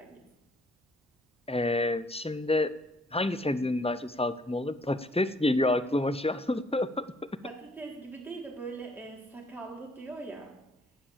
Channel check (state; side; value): normal; both; correlation 0.64